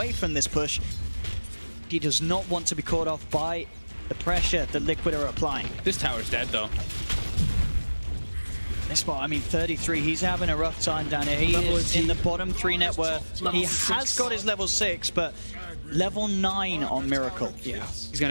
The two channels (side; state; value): both; inverted; correlation -1.00